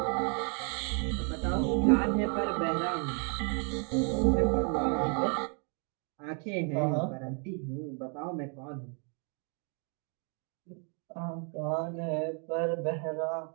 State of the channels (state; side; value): quieter; left; 39.8 dB